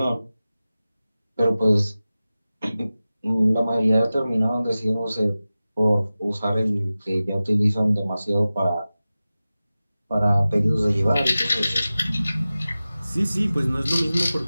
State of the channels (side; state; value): both; inverted; correlation -0.96